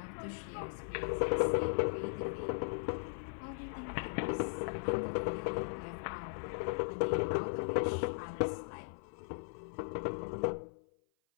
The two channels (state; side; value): silent; right; 53 dB below the other